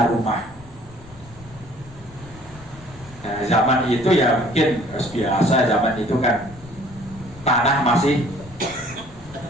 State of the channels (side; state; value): left; noise; rumble, 20 dB below the sound